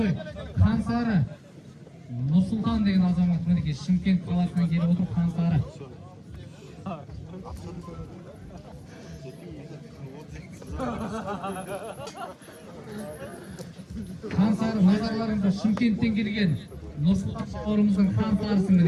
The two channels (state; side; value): identical; both; correlation 1.00